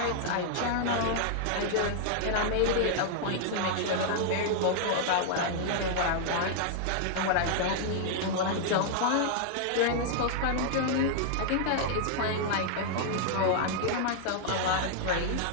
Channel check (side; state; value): both; different; correlation -0.01